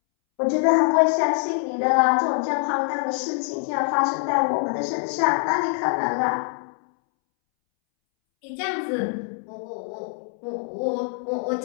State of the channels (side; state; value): right; silent; 63 dB below the other